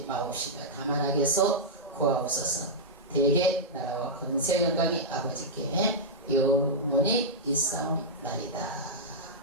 마옵시며 다만 악에서 구하옵소서. 대개 나라와 권세 영광이 아버지께 영원히 있사옵나이다.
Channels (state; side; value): normal; both; correlation -0.08